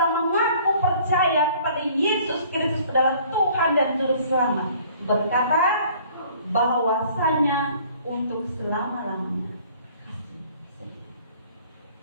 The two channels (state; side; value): inverted; both; correlation -0.55